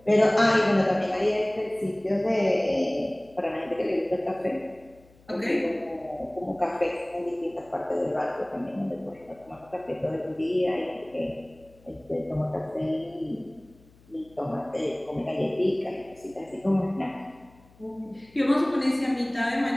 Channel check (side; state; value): left; noise; hum, 28 dB below the sound